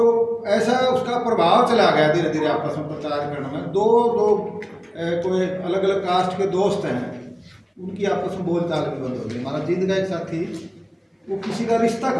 ऐसा उसका प्रभाव चला गया धीरे धीरे आपस में प्रचार करने में। दो कोई अलग अलग कास्ट के दोस्त हैं, उनकी आपस में बोलचाल भी बंद हो गई। हमारा जिंद का एक साथी, वो किसी का रिश्ता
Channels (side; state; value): both; identical; correlation 1.00